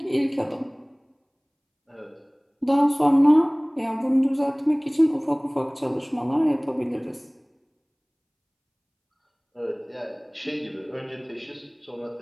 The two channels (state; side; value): identical; both; correlation 1.00